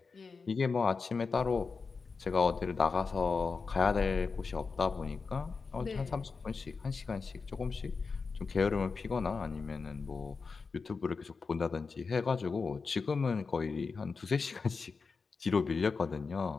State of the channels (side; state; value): right; quieter; 4.8 dB